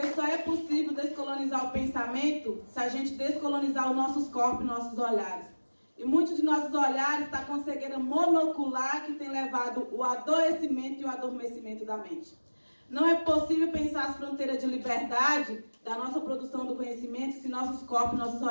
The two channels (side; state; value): both; inverted; correlation -1.00